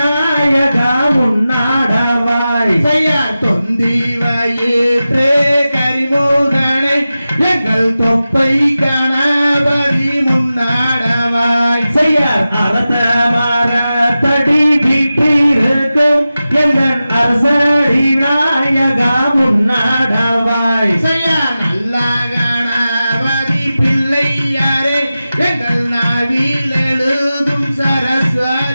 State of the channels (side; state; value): both; inverted; correlation -0.94